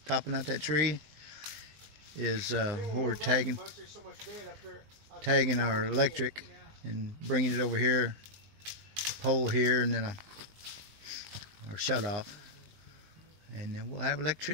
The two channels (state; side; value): late; left; 19 ms